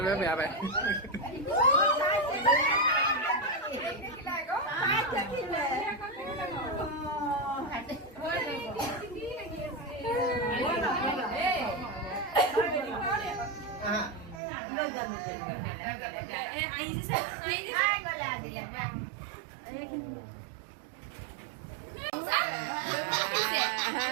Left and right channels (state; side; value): drops out; left; at 14.4 s